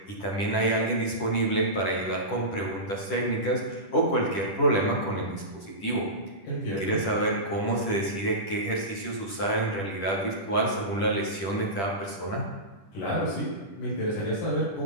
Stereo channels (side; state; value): right; late; 10 ms